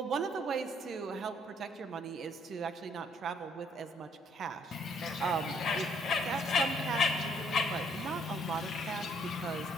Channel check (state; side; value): normal; both; correlation 0.66